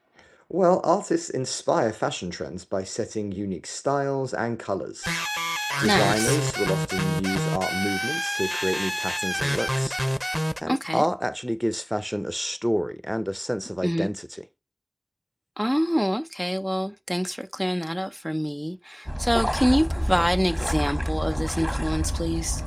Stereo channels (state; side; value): identical; both; correlation 1.00